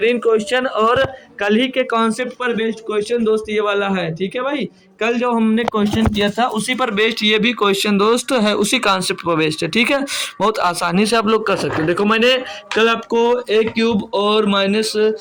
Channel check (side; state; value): both; identical; correlation 1.00